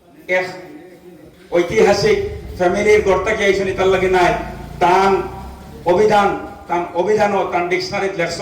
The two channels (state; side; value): identical; both; correlation 1.00